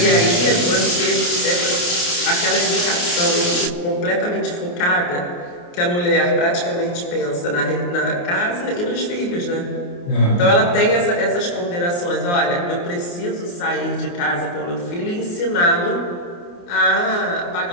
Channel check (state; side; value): late; right; 28 ms